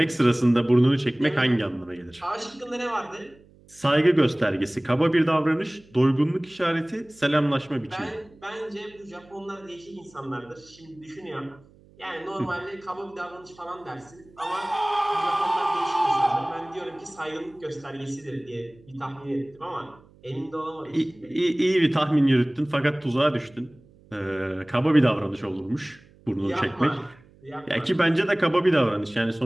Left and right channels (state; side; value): noise; right; hum, 27 dB below the sound